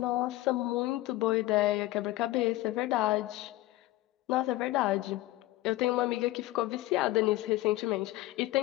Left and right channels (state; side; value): quieter; right; 17.5 dB